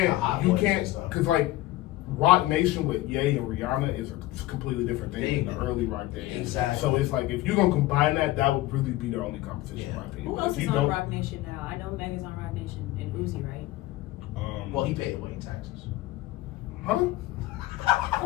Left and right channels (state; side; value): quieter; right; 17.0 dB